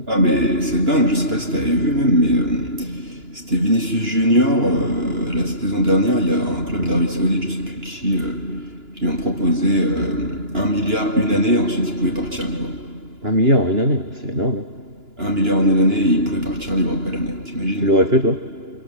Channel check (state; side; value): late; left; 2.9 ms